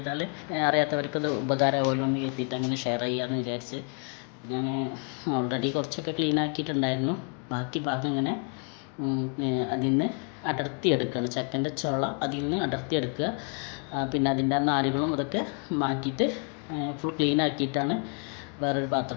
അറിയാത്തവർക്കത് ഉപകാരമാവുമല്ലോ എന്ന് കരുതിയിട്ട് അങ്ങനെ ഷെയർ ചെയ്യാമെന്ന് വിചാരിച്ച് ഞാൻ ഓൾറെഡി കുറച്ചൊക്കെ ക്ലീൻ ആക്കിയിട്ടുണ്ടായിരുന്നു. ബാക്കി ഭാഗം ഇങ്ങനെ അതിൽ നിന്ന് അടർത്തിയെടുക്കുകയാണ്. ചക്കൻ്റെ ചുള അതിൽ നിന്ന് അടർത്തിയെടുക്കുക. പിന്നെ അതിൻ്റെ നാരുകളും അതൊക്കെ മാറ്റിയിട്ട് ഫുൾ ക്ലീൻ ആക്കിയിട്ടാണ് വേറൊരു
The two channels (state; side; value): quieter; right; 37.8 dB